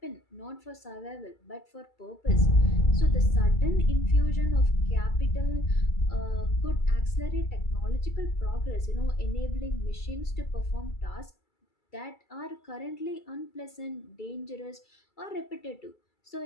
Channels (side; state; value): right; late; 2.3 ms